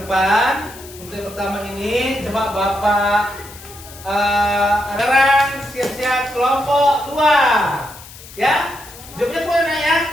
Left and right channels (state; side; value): noise; left; hiss, 18 dB below the sound